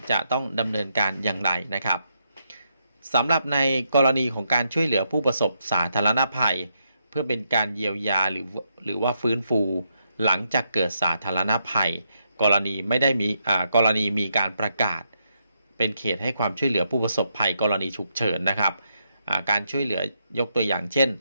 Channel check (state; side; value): inverted; both; correlation -0.79